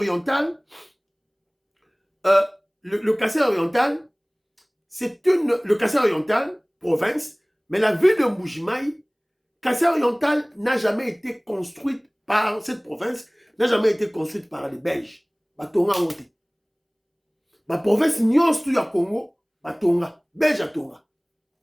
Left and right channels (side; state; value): both; identical; correlation 1.00